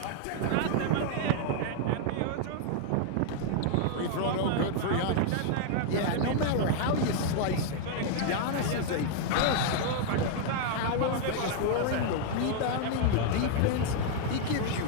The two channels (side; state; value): both; different; correlation 0.00